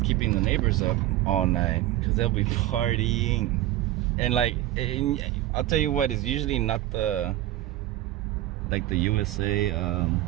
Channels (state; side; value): quieter; left; 14.7 dB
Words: keeping the neighbors up all night because they'll be partying, and like, I'll tell you what, it's usually not the USA